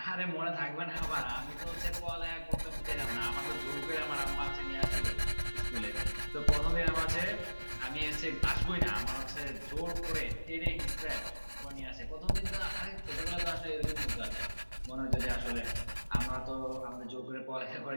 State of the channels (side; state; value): both; inverted; correlation -1.00